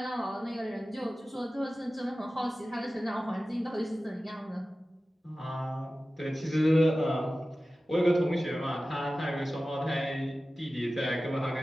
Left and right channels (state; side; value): normal; both; correlation 0.95